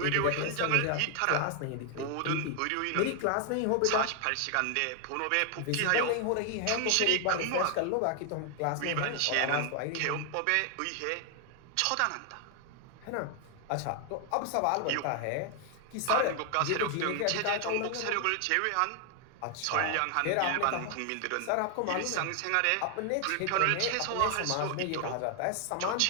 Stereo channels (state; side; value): different; both; correlation 0.00